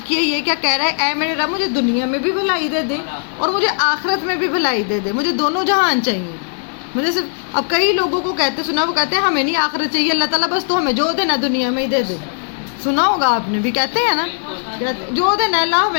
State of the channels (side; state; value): right; silent; digital silence